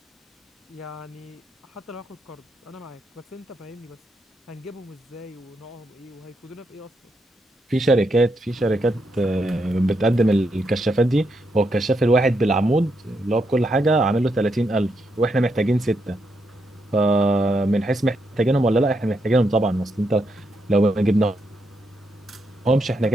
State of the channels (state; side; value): normal; both; correlation 0.80